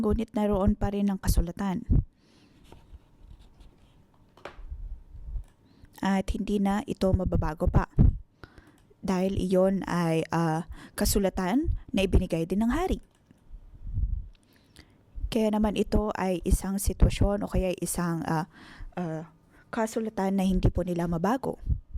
ngunit naroon pa rin ang kasulatan. At hindi na ito mababago pa. Dahil iyon ay kasulatan na ibinigay din ng hari. Kaya naman ito ay isang sitwasyon o kaya isang kasulatan na hindi po nila mabago.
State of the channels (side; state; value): both; identical; correlation 1.00